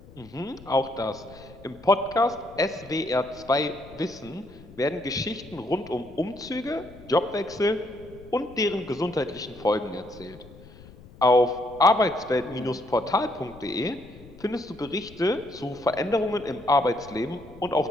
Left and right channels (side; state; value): left; noise; rumble, 20 dB below the sound